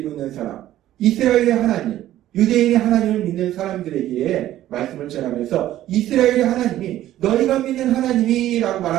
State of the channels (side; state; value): left; quieter; 13.4 dB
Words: 있는 사람, 이스라엘의 하나님, 유대인의 하나님을 믿는 사람들에게 말씀을 전하면서 이스라엘의 하나님이 너희가 믿는 하나님이라고